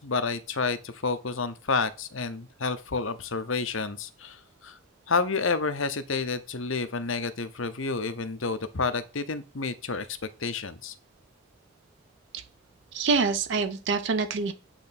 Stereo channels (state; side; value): normal; both; correlation -0.10